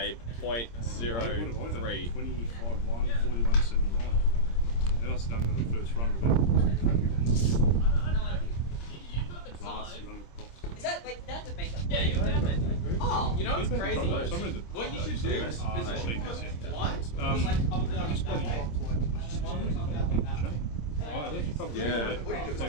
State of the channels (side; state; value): right; late; 26 ms